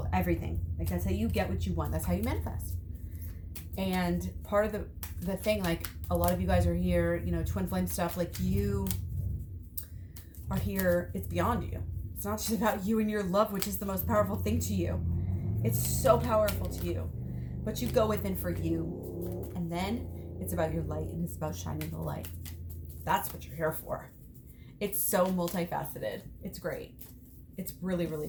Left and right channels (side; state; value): both; identical; correlation 1.00